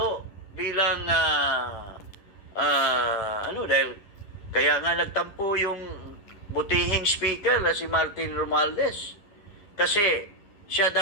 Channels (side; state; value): right; late; 11 ms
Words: bilang dahil kaya nga nagtampo yung butihing speaker na si Martin Romualdez. Kasi siya